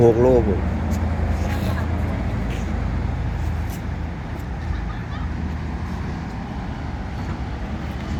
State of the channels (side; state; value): both; identical; correlation 1.00